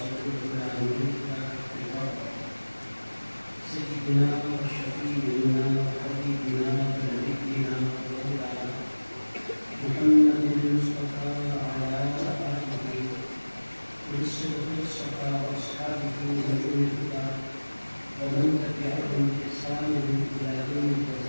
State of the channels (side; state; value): both; inverted; correlation -1.00